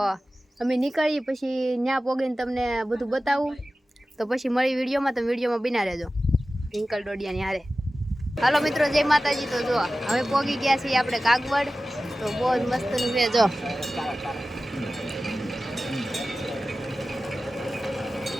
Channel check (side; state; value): both; normal; correlation 0.95